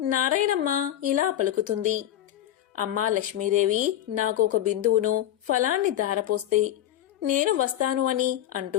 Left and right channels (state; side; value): quieter; right; 12.2 dB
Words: నారాయణమ్మ ఇలా పలుకుతుంది. అమ్మా లక్ష్మీదేవి, నాకు ఒక బిందువును ఫలాన్ని దారపోస్తే నేను వస్తాను అని